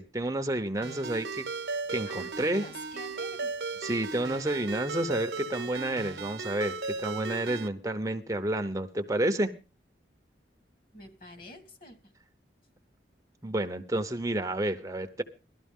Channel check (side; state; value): both; normal; correlation 0.53